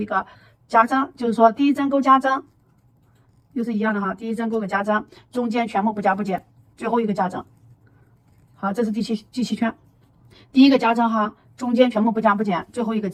个加针，就是说第1针勾加针，又是一样的哈，第1针勾个加针，中间全部不加不减，最后一个加针。好，这是第七圈，第1个加针哈，中间全部不加不减，最后一个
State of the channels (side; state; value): both; identical; correlation 1.00